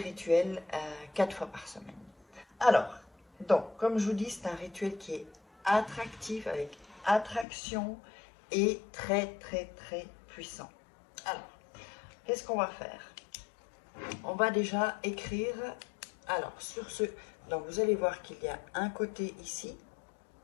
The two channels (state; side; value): drops out; right; at 7.5 s